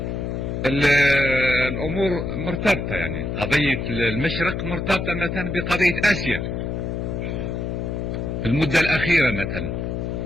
الامور مرتبطه. يعني قضيه المشرق مرتبطه مثلا بقضيه اسيا في المده الاخيره. مثلا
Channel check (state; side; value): noise; left; hum, 3 dB below the sound